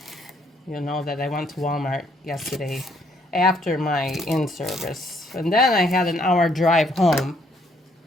you'll know that I went to Walmart yesterday after my in-service. And then I had an hour drive home.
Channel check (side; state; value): both; normal; correlation 0.68